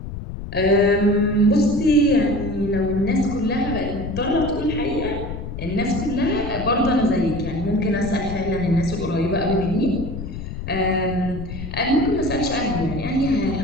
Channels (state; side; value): noise; left; rumble, 8 dB below the sound